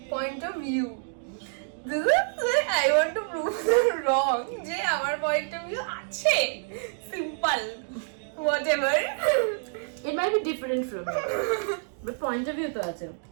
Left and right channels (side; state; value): left; silent; digital silence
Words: point of view. This is where I want to prove them wrong. যে আমার point of view আছে, simple, whatever. It might be different from you, but point of view to ache.